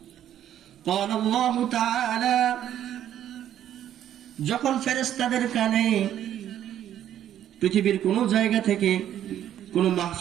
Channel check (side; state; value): left; quieter; 11.0 dB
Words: ক্বালা আল্লাহু তাআলা, যখন ফেরেশতাদের কানে পৃথিবীর কোন জায়গা থেকে, কোন